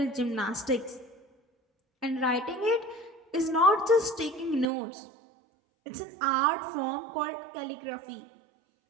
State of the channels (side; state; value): left; drops out; at 4.7 s